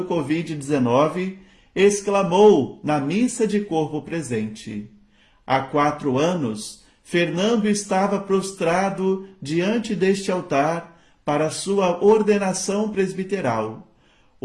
Covid-19, exclamou na missa de corpo presente: há 4 anos, Fernando estava prostrado diante deste altar para sua ordenação presbiteral.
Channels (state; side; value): identical; both; correlation 1.00